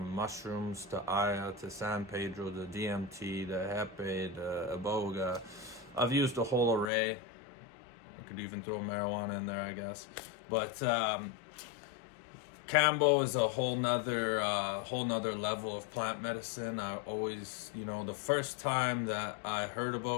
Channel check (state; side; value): drops out; right; at 6.9 s